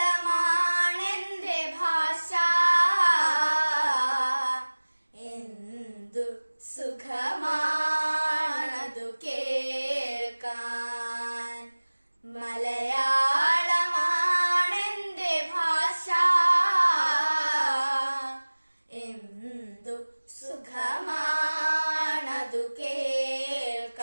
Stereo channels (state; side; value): inverted; both; correlation -1.00